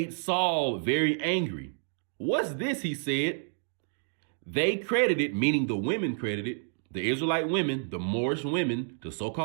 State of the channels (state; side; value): silent; left; 58 dB below the other